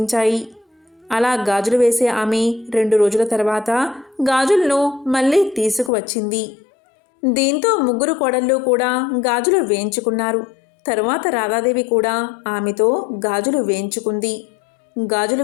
అలా గాజులు వేసే ఆమె 2 రోజుల తర్వాత గాజులను మళ్ళీ తీసుకువచ్చింది. దీంతో 3 కోడళ్ళు కూడా గాజులు వేయించుకున్నారు. తరువాత రాధాదేవి కూడా ఆమెతో గాజులు వేయించుకుంది. గాజులు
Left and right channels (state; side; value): drops out; right; at 5.9 s